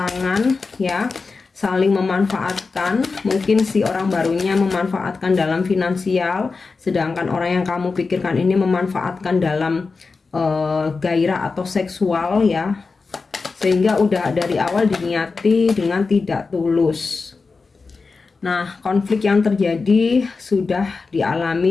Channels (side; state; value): right; quieter; 4.3 dB